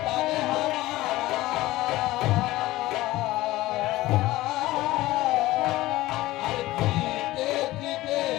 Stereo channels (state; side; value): quieter; right; 17.6 dB